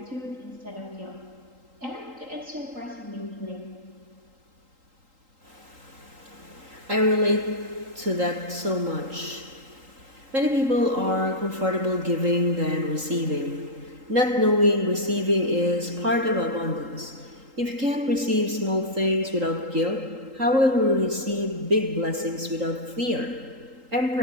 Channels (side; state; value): left; late; 3.8 ms